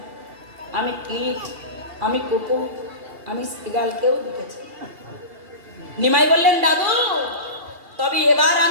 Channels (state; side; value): late; left; 2.8 ms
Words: আমি কীট, আমি কুকুর, আমি শ্রীগালকেও দেখেছি। নিমাই বললেন, দাদু, তবে এবার